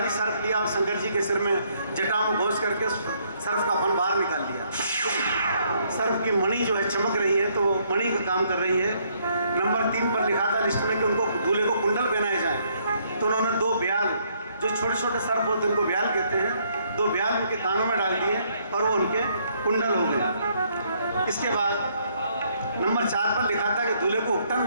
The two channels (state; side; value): inverted; both; correlation -0.69